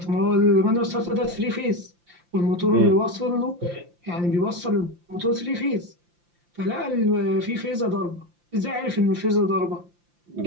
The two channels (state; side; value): late; left; 5.8 ms